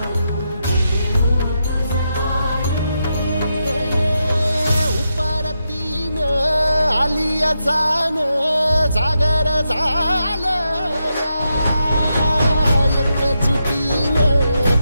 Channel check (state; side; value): inverted; both; correlation -0.85